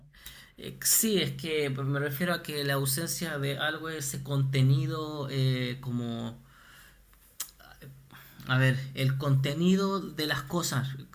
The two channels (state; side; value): identical; both; correlation 1.00